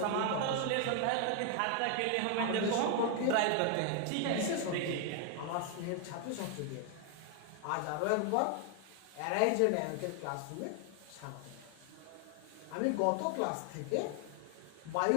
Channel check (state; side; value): different; both; correlation 0.00